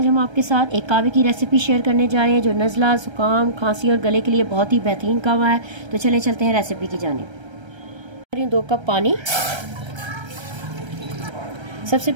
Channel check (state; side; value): late; left; 1.3 ms